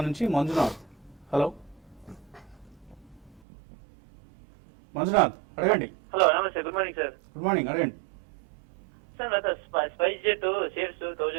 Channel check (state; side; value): drops out; left; at 3.4 s